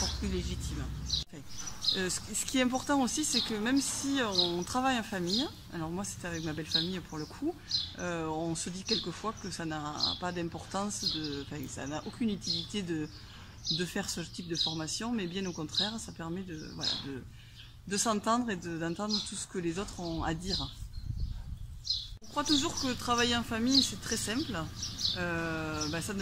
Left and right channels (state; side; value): identical; both; correlation 1.00